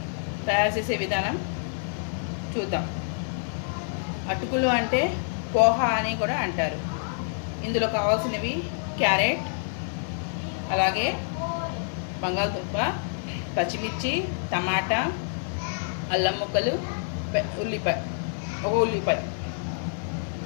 తయారు చేసే విధానం చూద్దాం. అటుకులు అంటే పోహా అని కూడా అంటారు. ఇందులో కావాల్సినవి క్యారెట్, అలాగే బంగాళదుంప, పచ్చిమిర్చి, టమాటా, అల్లం ముక్కలు, ఉల్లిపాయ.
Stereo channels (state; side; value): silent; right; 60 dB below the other